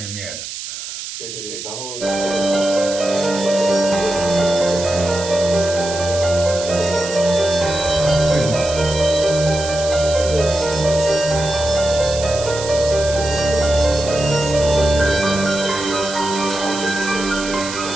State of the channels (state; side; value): noise; right; hiss, 9 dB below the sound